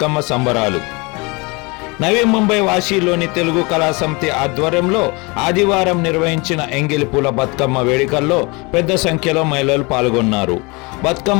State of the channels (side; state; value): right; quieter; 27.4 dB